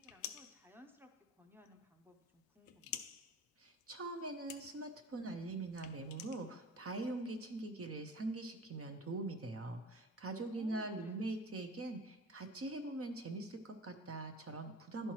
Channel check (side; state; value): both; normal; correlation 0.39